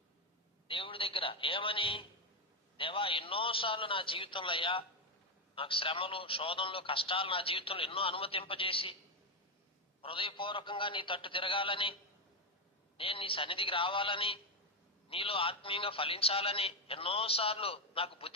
దేవుడి దగ్గర. ఏమని? దేవా, ఎన్నోసార్లు నా జీవితంలో అయ్యా నాకు శ్రమలు, శోధనలు, కష్టాలు నా జీవితంలో ఎన్నో అనుమతింపజేసి హృదయపూర్వకంగా నీ తట్టు తిరగాలని, నేను నీ సన్నిధికి రావాలని, నీలో ఆత్మీయంగా ఫలించాలని ఎన్నోసార్లు నాకు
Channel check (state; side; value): normal; both; correlation 0.08